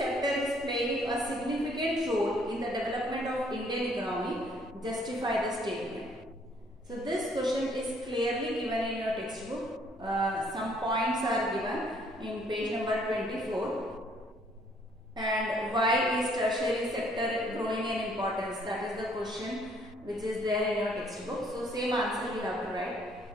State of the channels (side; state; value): both; normal; correlation 0.64